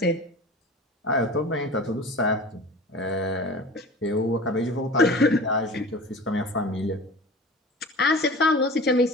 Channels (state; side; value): normal; both; correlation 0.38